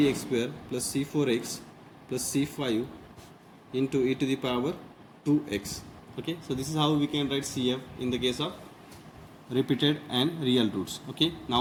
square plus c4x plus c5 into e to the power 2x. Okay, so this is how we can write CF in the case of repeated and real roots. Okay,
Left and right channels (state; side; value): identical; both; correlation 1.00